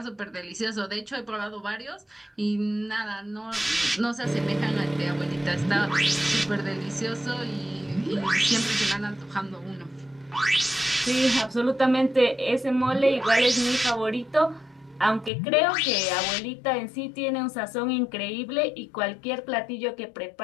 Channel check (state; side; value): drops out; right; at 15.3 s